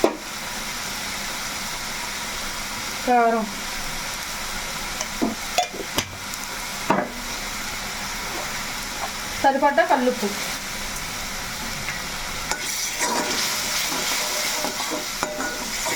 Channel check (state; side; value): identical; both; correlation 1.00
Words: కారం, సరిపడ్డ కల్లుప్పు,